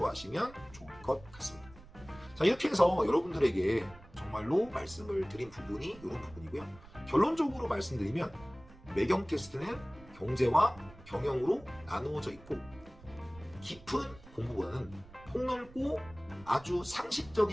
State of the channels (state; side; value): noise; right; rumble, 21 dB below the sound